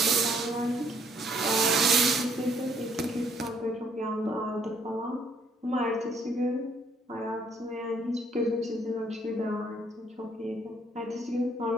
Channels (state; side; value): normal; both; correlation 0.66